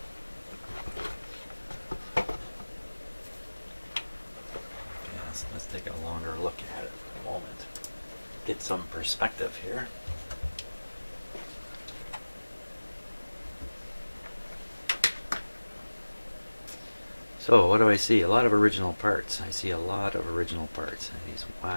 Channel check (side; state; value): both; inverted; correlation -1.00